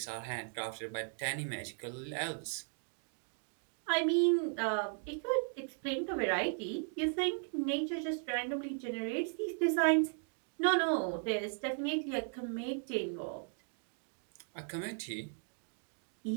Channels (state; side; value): silent; left; 53 dB below the other